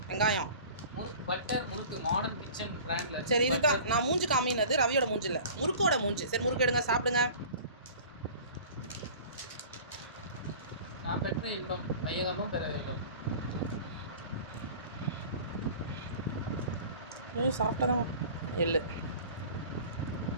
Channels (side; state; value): both; inverted; correlation -0.43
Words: வெங்காயம் முறுக்கு, பட்டர் முறுக்கு, மாடர்ன் கிச்சன் பிராண்ட்ல. சரி, இதுதான் நான் மூஞ்சி காமினது. ரவியோட மூஞ்சி இல்லை, முறுக்கோட மூஞ்சி. சரி, முறுக்கு எடுங்க, சாப்பிடுங்க. நான் பெற்ற இன்பம் வையகமும் பெற வேண்டும். சாப்பிட்டதான். எள்ளு